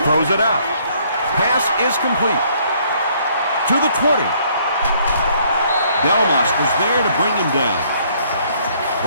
Throws it out. Pass is complete. To the 20. Delmas was there to bring him down.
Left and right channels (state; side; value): inverted; both; correlation -0.64